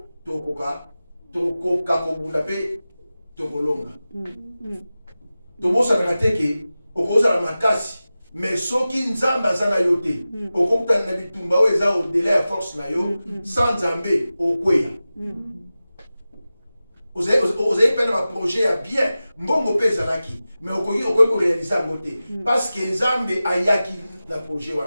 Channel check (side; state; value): both; inverted; correlation -0.95